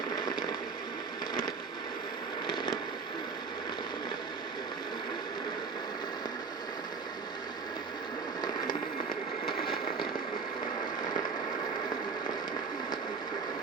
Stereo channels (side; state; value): left; quieter; 4.9 dB